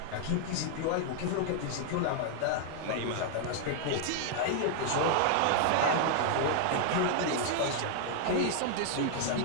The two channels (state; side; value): different; both; correlation 0.00